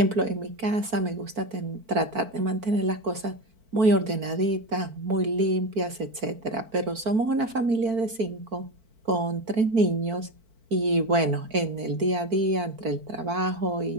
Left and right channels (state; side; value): late; left; 4.5 ms